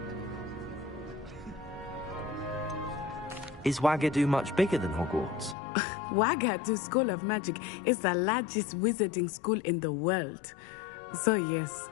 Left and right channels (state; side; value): drops out; right; at 5.6 s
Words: Is Ouagadougou much bigger than Hogwarts? Ouagadougou School of Magic is the largest wizarding school in the world. So yes,